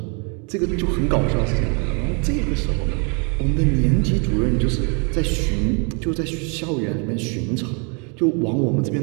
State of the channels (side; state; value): left; quieter; 35.9 dB